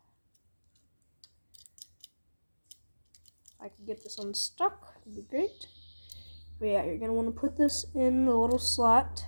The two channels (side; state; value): both; inverted; correlation -1.00